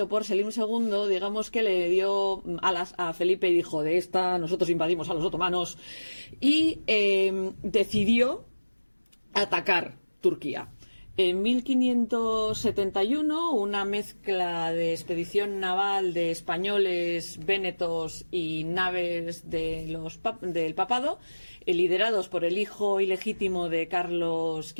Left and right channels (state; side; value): inverted; both; correlation -1.00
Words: por Selim II, digamos que le dio alas a Felipe y dijo, de esta nosotros invadimos a los otomanos, y decidió atacar Turquía. En 1571, una mezcla de expedición naval de españoles, vénetos y naves del papado, liderados por el hijo ilegítimo de Carlos